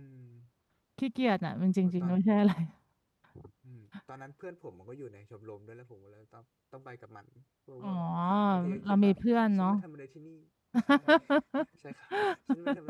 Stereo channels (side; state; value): both; identical; correlation 1.00